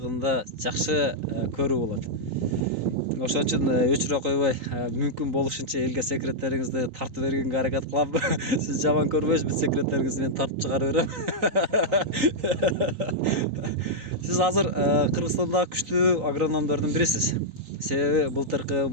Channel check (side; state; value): left; late; 3.9 ms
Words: жакшы көрүү болот. Ошон үчүн өчүрө койбой, мүмкүн болушунча элге секреттериңизди тартып бергенге аракет кылам. Сиз жаман көрбөйсүз, бүт секреттериңизди мен тартып чыгарып берем. Сиз азыр Кыргызстандагы күчтүү агрономдордун бирисиз. Себеби былтыркы